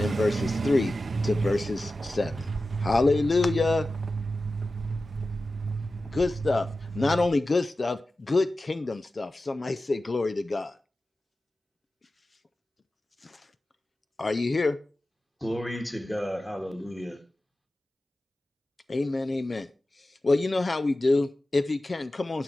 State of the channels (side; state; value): both; normal; correlation 0.94